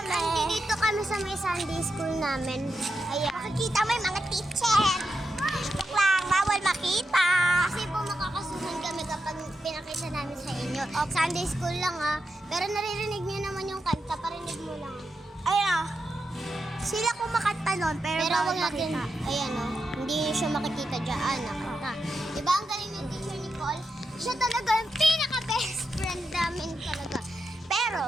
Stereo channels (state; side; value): normal; both; correlation 0.87